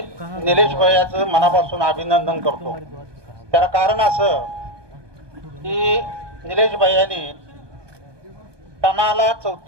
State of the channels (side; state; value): left; late; 1.2 ms